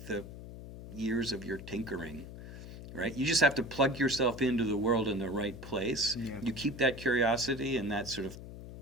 the years of your tinkering, right? You just have to plug yourself into the world in the right place. Yeah. You keep that curiosity and that sort of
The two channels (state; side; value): noise; left; hum, 12 dB below the sound